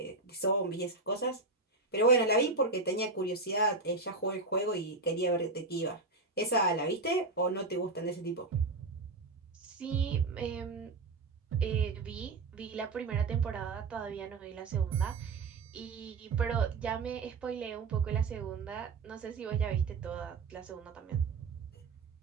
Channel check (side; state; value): left; quieter; 3.7 dB